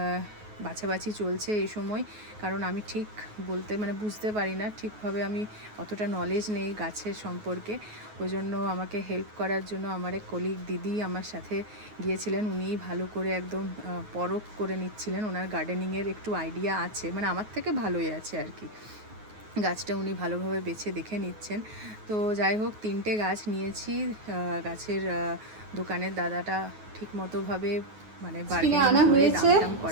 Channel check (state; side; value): late; left; 9.4 ms